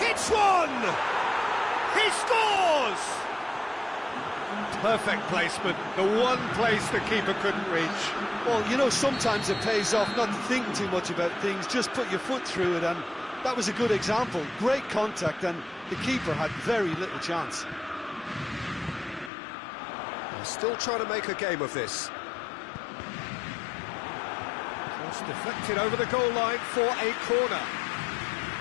one! He scores! Perfect placement, the one place the keeper couldn't reach. Well, you know, sometimes it pays off not to think too much about things, just put your foot through it, and that was a good example. Great contact, and the keeper had very little chance. They're still trying to make a game of this. Cross deflected over the goal line for a corner.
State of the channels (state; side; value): drops out; right; at 19.3 s